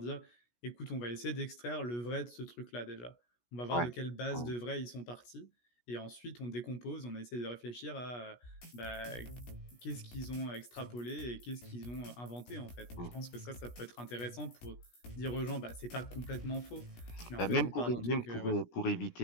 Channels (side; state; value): right; late; 17 ms